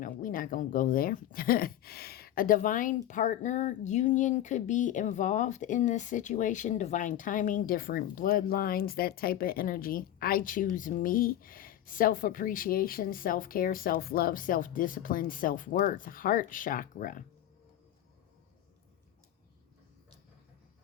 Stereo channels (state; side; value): quieter; right; 12.2 dB